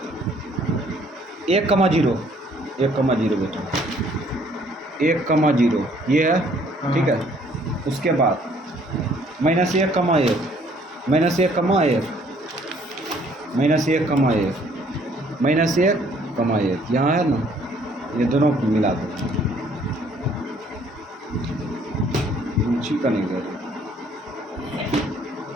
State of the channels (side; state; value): both; normal; correlation 0.61